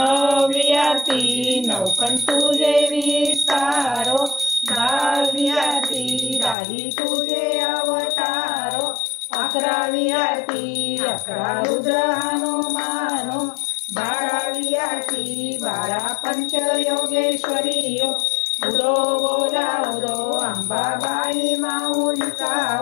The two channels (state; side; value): drops out; right; at 6.6 s